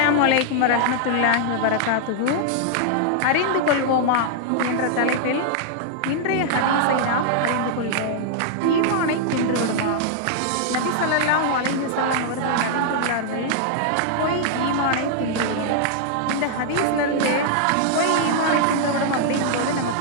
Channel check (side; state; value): both; different; correlation -0.01